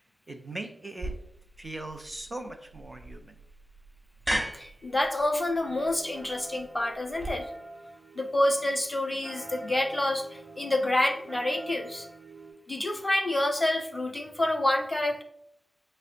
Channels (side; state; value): both; normal; correlation 0.95